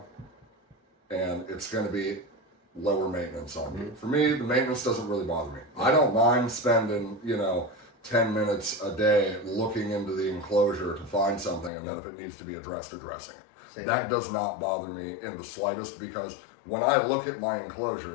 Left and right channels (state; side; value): drops out; right; at 11.7 s